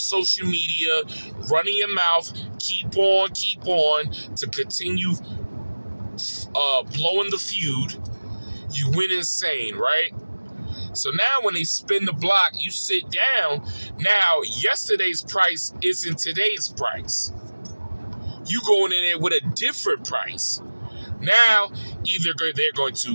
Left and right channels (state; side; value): inverted; both; correlation -1.00